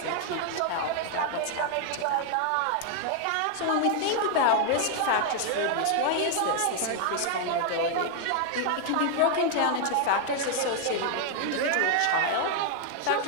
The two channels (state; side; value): different; both; correlation 0.00